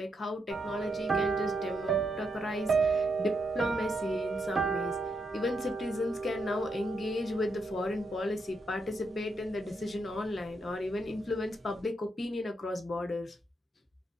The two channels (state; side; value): normal; both; correlation 0.80